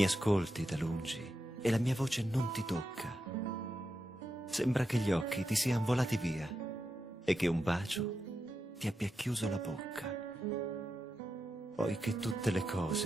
ascolti da lungi, e la mia voce non ti tocca. Sembra che gli occhi ti siano volati via, e che un bacio ti abbia chiuso la bocca. Poi che tutte le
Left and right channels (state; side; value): normal; both; correlation 0.87